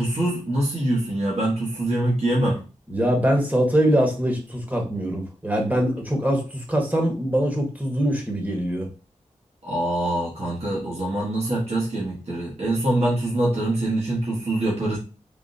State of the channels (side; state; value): both; normal; correlation 0.85